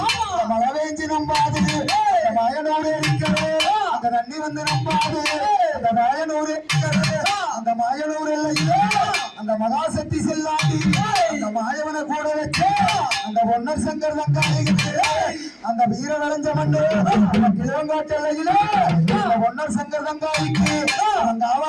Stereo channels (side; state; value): both; identical; correlation 1.00